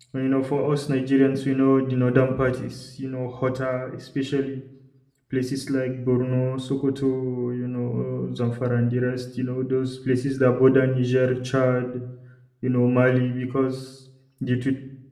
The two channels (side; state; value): both; identical; correlation 1.00